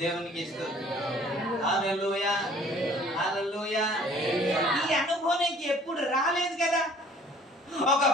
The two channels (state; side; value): normal; both; correlation 0.54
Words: దేవునికి ఇస్తుంది. హల్లెలూయా, హల్లెలూయా. ఈ అనుభవం ఎప్పుడు రాలేదు కదా. ఒక